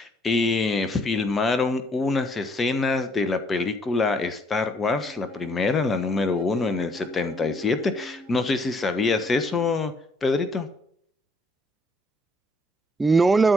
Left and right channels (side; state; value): both; normal; correlation 0.67